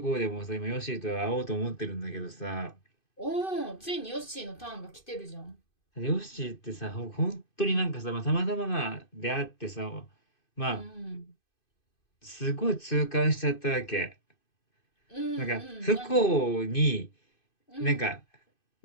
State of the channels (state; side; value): late; right; 2.5 ms